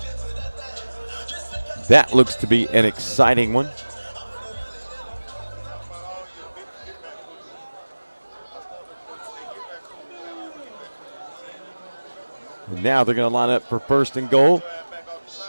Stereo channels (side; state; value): both; inverted; correlation -1.00